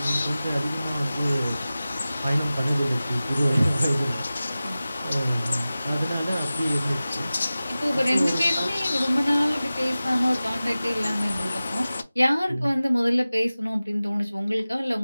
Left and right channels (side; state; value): both; inverted; correlation -0.96